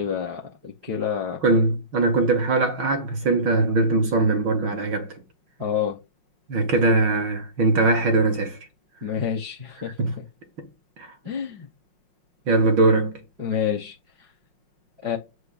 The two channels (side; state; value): left; late; 5.5 ms